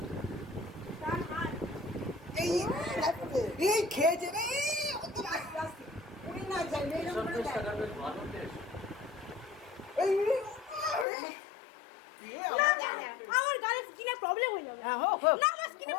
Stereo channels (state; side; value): drops out; right; at 11.1 s